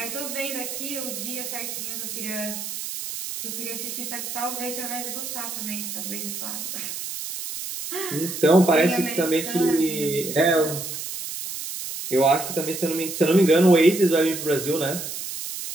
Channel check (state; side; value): noise; right; hiss, 7 dB below the sound